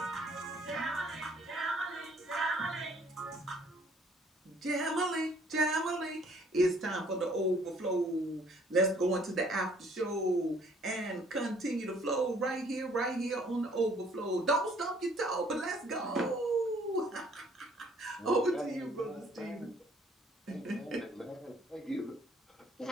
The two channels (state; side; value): normal; both; correlation 0.60